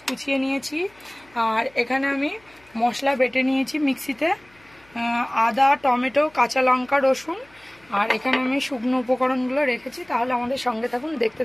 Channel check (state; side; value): noise; left; hum, 29 dB below the sound